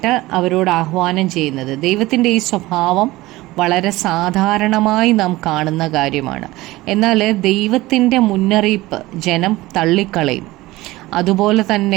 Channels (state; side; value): quieter; left; 18.8 dB